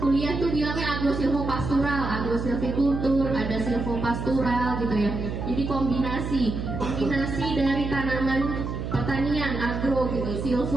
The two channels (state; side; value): noise; right; hum, 4 dB below the sound